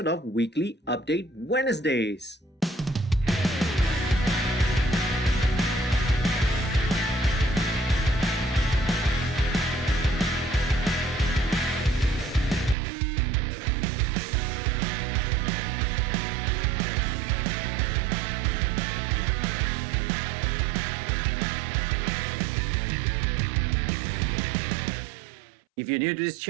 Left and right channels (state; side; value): drops out; left; at 12.8 s